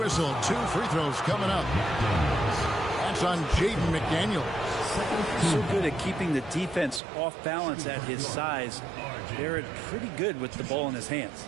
2 free throws coming up. That's on Jaden McDaniels. So good at keeping the defense off balance at his size. Barrett pretty good with the ball in his hands.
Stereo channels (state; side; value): drops out; left; at 7.0 s